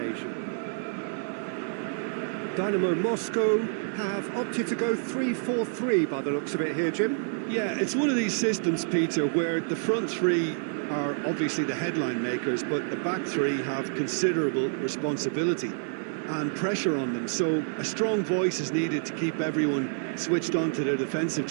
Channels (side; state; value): left; silent; digital silence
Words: Dynamo Moscow have opted to go 3-4-3 by the looks of it here, Jim. Yeah, it's one of these systems, Peter, where the front three are obviously the headline makers, but the back three have considerable responsibility and pressure on them. So a strong voice is needed to keep everyone switched on to their defensive